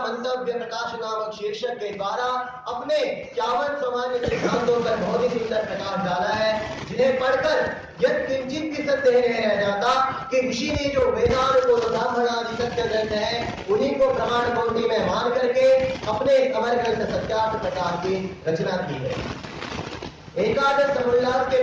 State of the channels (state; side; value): identical; both; correlation 1.00